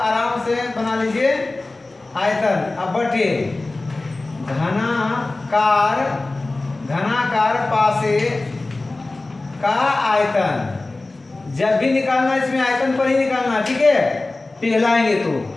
आराम से बना लीजिए। आयतन अब बटे घनाकार पासे का आयतन। जब भी निकालना इसमें आयतन पर ही निकालना, ठीक है, पिघलाएंगे तो।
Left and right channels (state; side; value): quieter; right; 3.1 dB